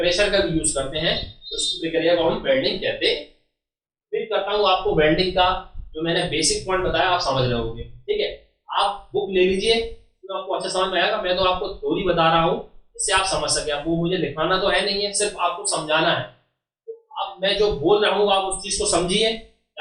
का भी यूज करते हैं, तो उस प्रक्रिया को हम वेल्डिंग कहते हैं। उम्मीद करता हूँ आपको वेल्डिंग का जो मैंने बेसिक पॉइंट बताया आप समझ रहे होंगे, ठीक है। आप बुक ले लीजिए तो आपको अच्छा समझ में आएगा, मैं तो आपको थ्योरी बता रहा हूँ इससे आप समझ सके, आपको मुझे दिखाना तो है नहीं है, सिर्फ आपको समझाना है। तो अब मैं जो बोल रहा हूँ आप उस चीज को समझिए,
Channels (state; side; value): identical; both; correlation 1.00